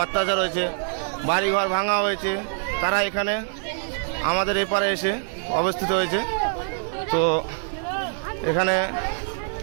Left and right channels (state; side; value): silent; left; digital silence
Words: অত্যাচার হয়েছে, বাড়িঘর ভাঙা হয়েছে, তারা এখানে আমাদের এপারে এসে অবস্থিত হয়েছে। তো এখানে